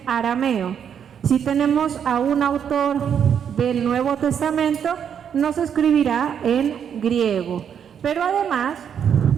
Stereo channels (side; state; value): left; quieter; 8.2 dB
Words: arameo. Si tenemos a un autor del Nuevo Testamento, nos escribirá en griego. Pero además,